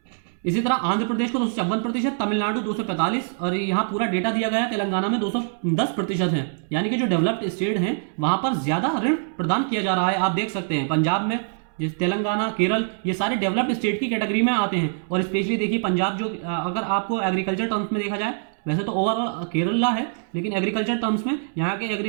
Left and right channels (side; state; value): left; silent; 63 dB below the other